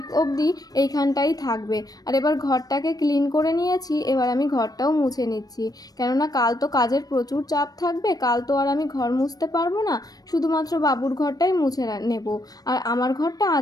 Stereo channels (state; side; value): late; right; 0.18 ms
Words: অবধি এইখানটাই থাকবে। আর এবার ঘরটাকে ক্লিন করে নিয়েছি, এবার আমি ঘরটাও মুছে নিচ্ছি, কেননা কাল তো কাজের প্রচুর চাপ থাকবে। কাল তো আর আমি ঘর মুছতে পারবো না, শুধুমাত্র বাবুর ঘরটাই মুছে নেব। আর আমার ঘরটা